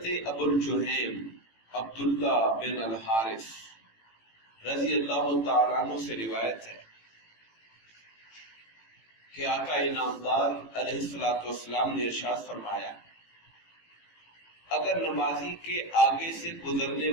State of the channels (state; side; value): late; right; 18 ms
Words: ابو الجہیم عبداللہ بن الحارث رضی اللہ تعالیٰ عنہ سے روایت ہے کہ آقا انعامدار علیہ الصلوۃ والسلام نے ارشاد فرمایا، اگر نمازی کے آگے سے گزرنے